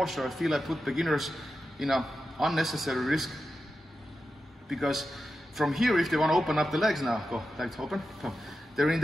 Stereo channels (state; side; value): normal; both; correlation 0.90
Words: I feel I put beginners in an unnecessary risk, because from here, if they want to open up the legs now, go, legs open, go. They're in